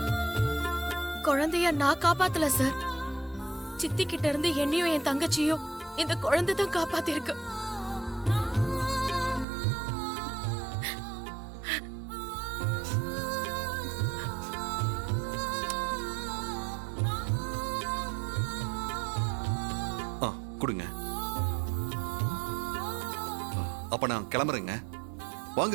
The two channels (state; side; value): drops out; left; at 9.5 s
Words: குழந்தைய நான் காப்பாத்தல சார். சித்தி கிட்ட இருந்து என்னையும் என் தங்கச்சியும் இந்த குழந்தை தான் காப்பாத்திருக்கு. ஆ, கொடுங்க. அப்ப நான் கிளம்புறேங்க.